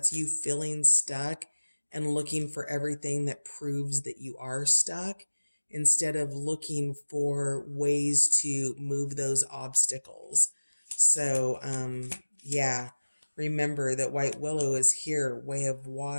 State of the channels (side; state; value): both; inverted; correlation -1.00